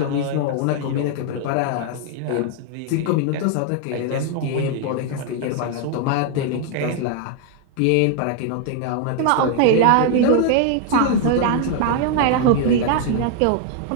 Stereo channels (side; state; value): both; different; correlation 0.00